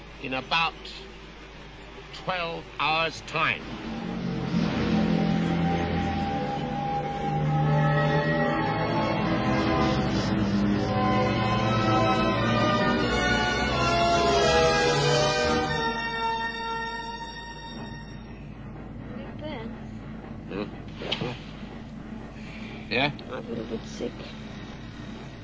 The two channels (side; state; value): both; identical; correlation 1.00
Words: in about 12 hours' time. Yeah? I'm a little bit sick.